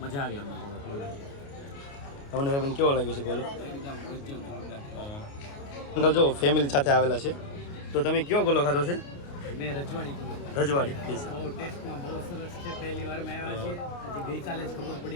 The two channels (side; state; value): right; late; 29 ms